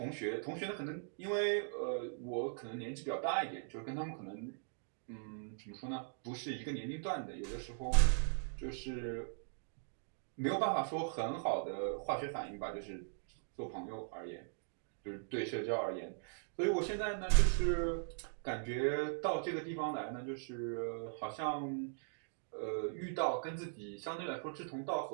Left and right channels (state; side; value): silent; left; digital silence